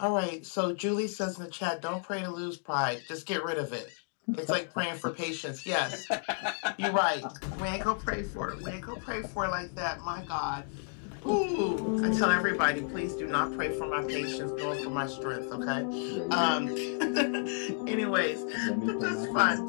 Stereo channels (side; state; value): right; silent; 57 dB below the other